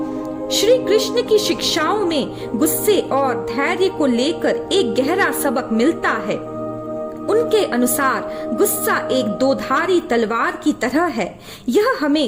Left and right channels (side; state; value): both; identical; correlation 1.00